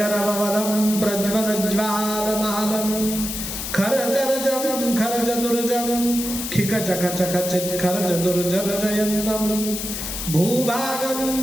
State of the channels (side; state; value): left; noise; hiss, 5 dB below the sound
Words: प्रज्वलज्वालमालम खरजरजम खरजदुर्जम खिकचखचखचित खरजदुर्जरजयन्तम भूभागम